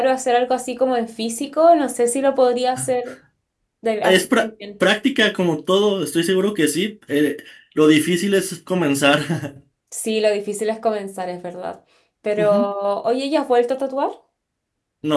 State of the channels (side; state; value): both; identical; correlation 1.00